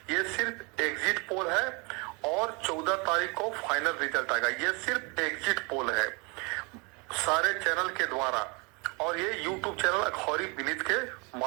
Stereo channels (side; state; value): left; quieter; 30.3 dB